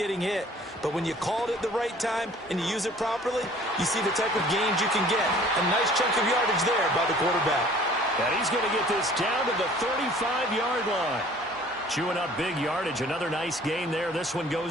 hit. But when you call it at the right time and you use it properly, you see the type of gains you can get. A nice chunk of yardage there by the quarterback. And he's going to get this down to the 35-yard line. Chewing up big yardage. Another nice gain there. This one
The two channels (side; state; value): both; normal; correlation 0.52